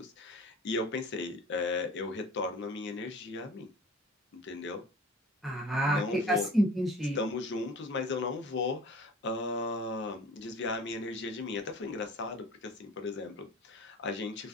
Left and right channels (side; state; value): both; normal; correlation 0.44